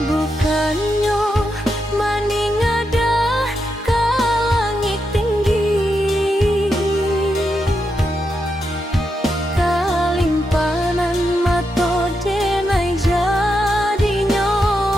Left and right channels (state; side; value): normal; both; correlation 0.84